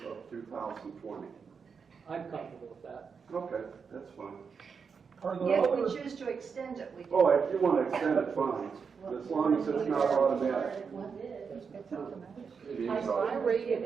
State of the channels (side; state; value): left; quieter; 5.9 dB